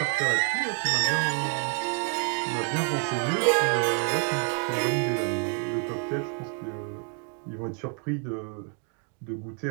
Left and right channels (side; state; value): left; quieter; 39.5 dB